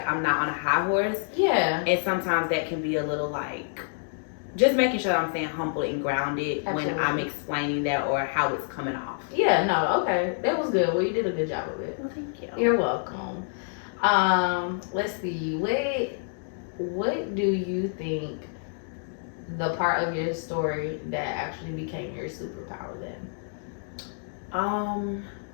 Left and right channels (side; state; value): right; silent; digital silence